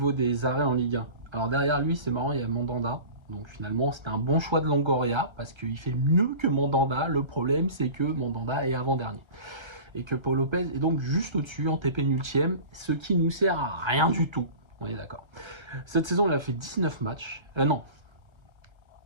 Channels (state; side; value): late; left; 1.3 ms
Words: des arrêts en Ligue 1. Alors derrière lui, c'est marrant, il y a Mandanda, donc finalement, c'était un bon choix de Longoria, parce qu'il fait mieux que Mandanda. Le problème, c'est que Mandanda est avant-dernier. Et que Pau Lopez est donc juste au-dessus, en TP nultième, ce qui nous sert à rien du tout. On est d'accord. Cette saison, il a fait 19 matchs.